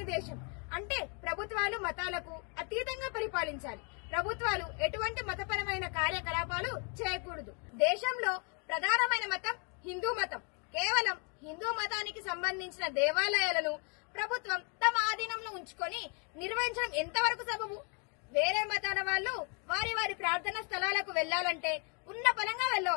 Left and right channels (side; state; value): right; quieter; 37.2 dB